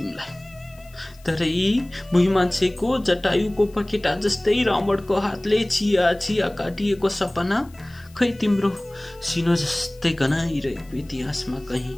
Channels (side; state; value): left; noise; hiss, 27 dB below the sound